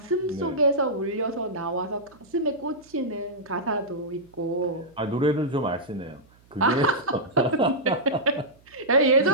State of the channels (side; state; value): right; noise; hum, 30 dB below the sound